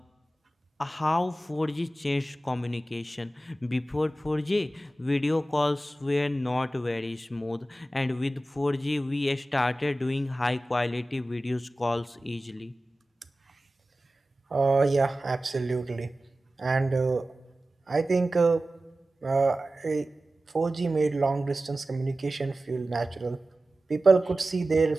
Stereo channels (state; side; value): normal; both; correlation 0.95